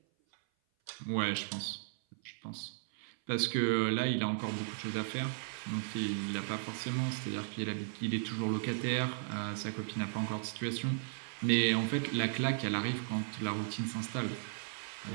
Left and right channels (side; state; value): left; silent; 54 dB below the other